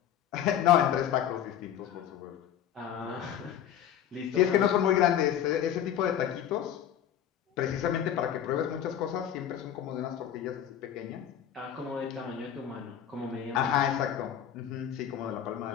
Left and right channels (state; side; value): quieter; right; 10.0 dB